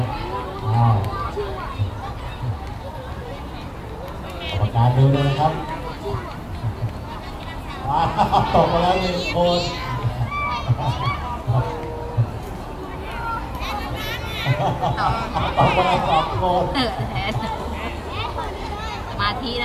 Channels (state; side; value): identical; both; correlation 1.00